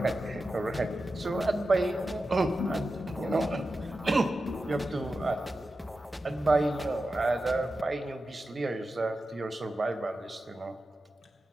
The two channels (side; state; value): both; normal; correlation 0.92